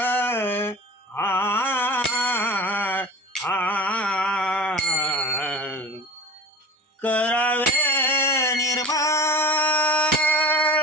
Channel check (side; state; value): both; normal; correlation 0.36